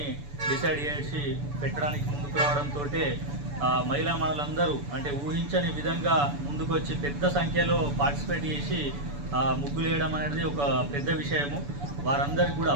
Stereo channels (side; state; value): left; late; 6.9 ms